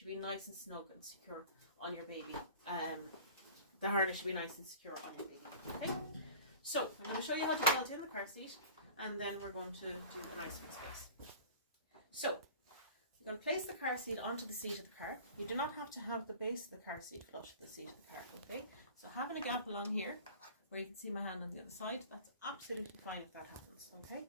be nice and snug and secure on your baby. The harness should be nice and secure on your baby, okay? So I'm going to show you how to belt in the car seat, and then we're going to do a nice fixed base. So you're going to place the car seat onto the seat of the car. You do not have to have the base of the car seat flush with the seat of the car, okay? So having a gap along here, where you can see my hand on the other side, that's absolutely fine if that happens, okay?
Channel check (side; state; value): both; inverted; correlation -0.42